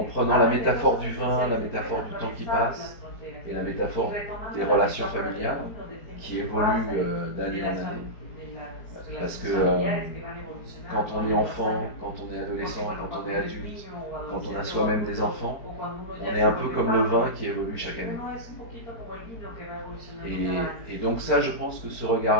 prenant la métaphore du vin, la métaphore du temps qui passe et la métaphore des relations familiales qui évoluent d'année en année. Parce que quand on est enfant, quand on est adolescent, quand on est adulte, quand on a soi-même des enfants, on est un peu comme le vin qui évolue chaque année. Et donc ça, je pense que ce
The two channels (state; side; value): late; right; 4.5 ms